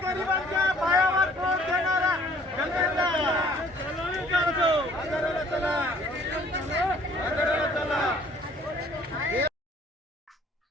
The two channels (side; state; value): both; normal; correlation 0.57